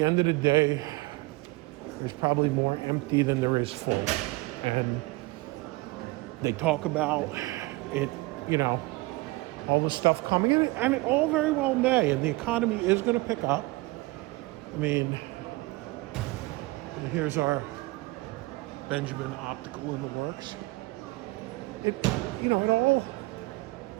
end of the day, there's probably more empty than there is full. And they talk about it, all the stuff coming in, and it all very well may, and the economy is going to pick up. I mean, here's our Benjamin Optical in the works. It all,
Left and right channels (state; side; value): quieter; left; 22.4 dB